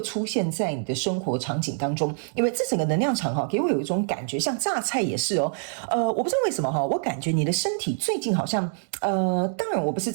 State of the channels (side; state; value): left; silent; digital silence